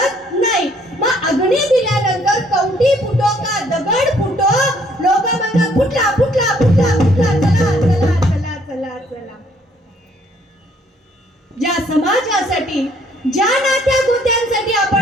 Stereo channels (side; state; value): both; normal; correlation 0.64